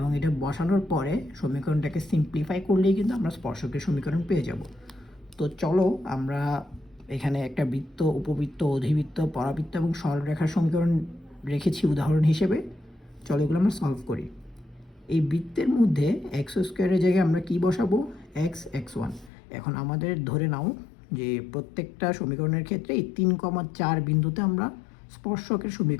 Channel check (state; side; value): drops out; right; at 19.3 s